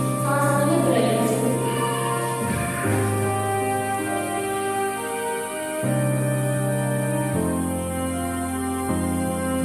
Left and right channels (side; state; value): both; identical; correlation 1.00